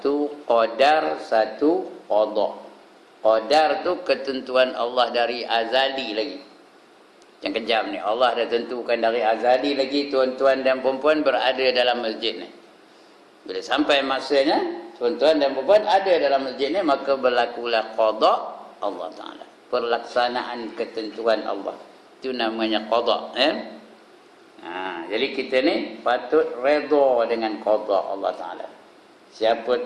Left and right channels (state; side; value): identical; both; correlation 1.00